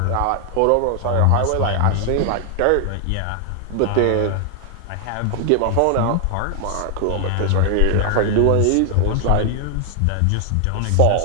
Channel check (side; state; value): both; different; correlation 0.00